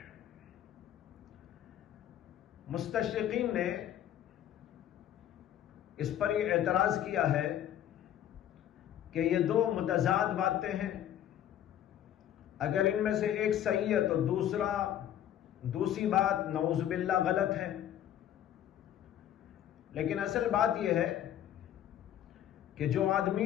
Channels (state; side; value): quieter; right; 11.0 dB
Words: مستشرقین نے اس پر یہ اعتراض کیا ہے کہ یہ دو متضاد باتیں ہیں، اگر ان میں سے ایک صحیح ہے تو دوسری بات نعوذ باللہ غلط ہے۔ لیکن اصل بات یہ ہے کہ جو آدمی